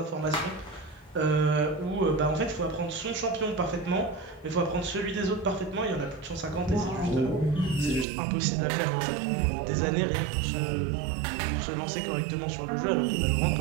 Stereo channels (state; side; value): drops out; left; at 8.1 s